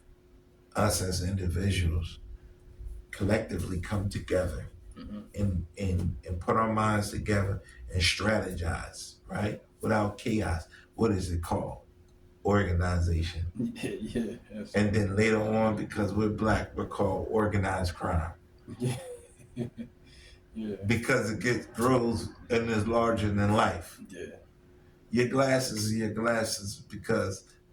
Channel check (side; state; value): both; identical; correlation 1.00